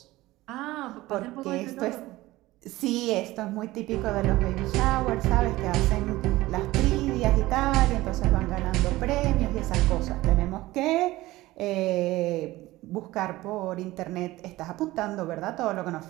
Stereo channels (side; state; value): left; quieter; 18.1 dB